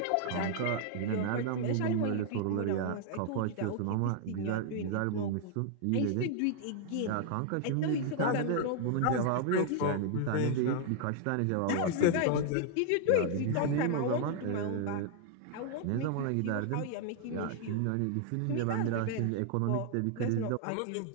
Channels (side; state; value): both; different; correlation 0.00